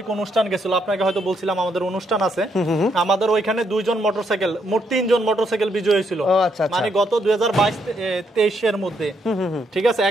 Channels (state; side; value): normal; both; correlation 0.75